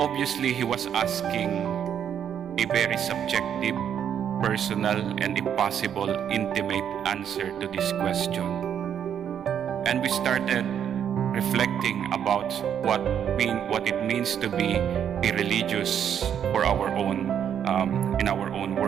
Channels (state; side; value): quieter; left; 8.9 dB